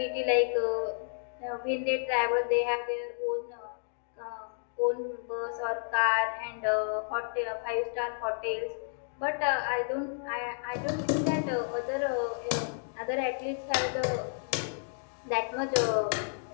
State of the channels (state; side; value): silent; right; digital silence